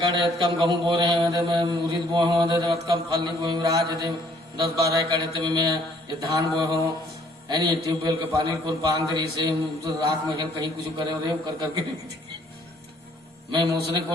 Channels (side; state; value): both; normal; correlation 0.62